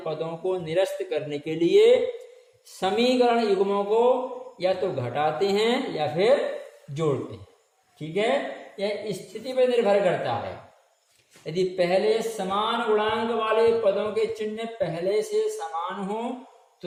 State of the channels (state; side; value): identical; both; correlation 1.00